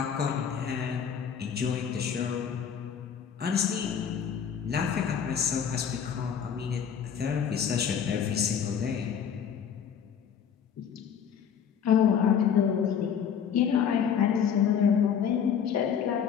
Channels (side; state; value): right; quieter; 7.8 dB